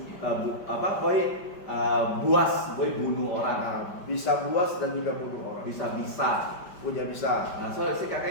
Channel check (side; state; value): right; late; 5.1 ms